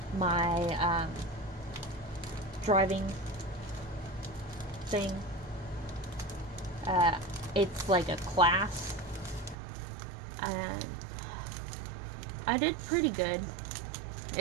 my driving thing. It's like a class, and I did pretty good.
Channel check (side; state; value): left; drops out; at 9.6 s